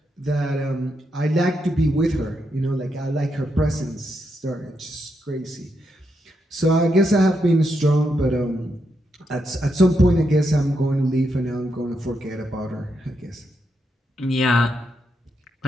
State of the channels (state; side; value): normal; both; correlation 0.82